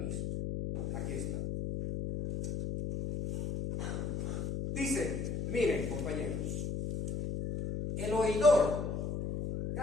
Aquí está. Dice, miren compañeros, el oidor,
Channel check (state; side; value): noise; left; hum, 3 dB below the sound